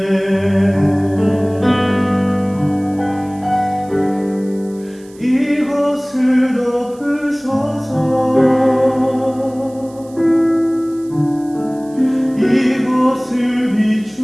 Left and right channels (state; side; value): noise; right; hiss, 26 dB below the sound